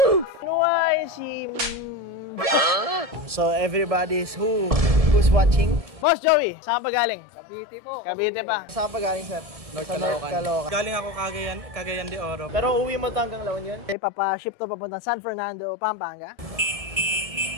Nuway si... So, everybody's who's watching? Boss Joey, saan pa galing? Cavite po. Cavite pa. Saan pa galing, sir? North Caloocan. Galing ako Cagayan de Oro. Pero uwi mo to hanggang La Union? Papa-ship to papunta San Fernando, Pampanga.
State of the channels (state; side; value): late; left; 1.7 ms